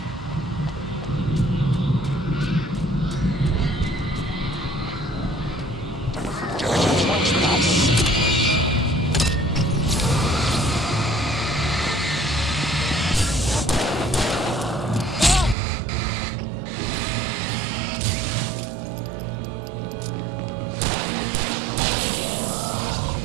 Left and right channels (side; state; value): left; drops out; at 15.6 s